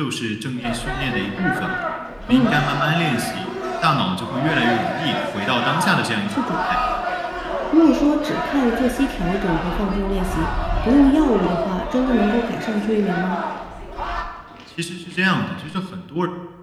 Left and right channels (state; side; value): identical; both; correlation 1.00